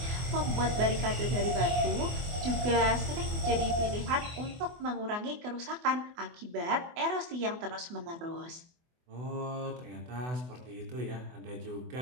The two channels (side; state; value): left; late; 24 ms